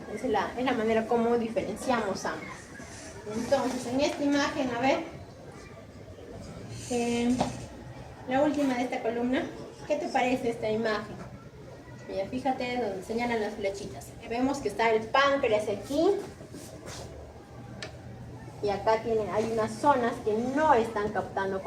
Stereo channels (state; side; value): identical; both; correlation 1.00